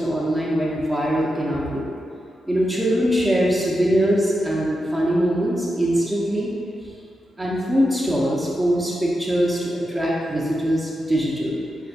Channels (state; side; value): normal; both; correlation 0.88